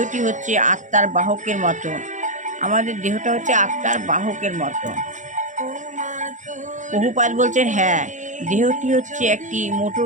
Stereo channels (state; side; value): late; left; 0.36 ms